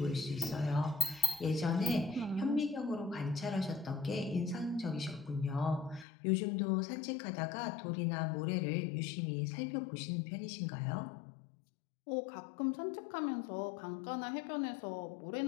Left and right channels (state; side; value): drops out; right; at 6.1 s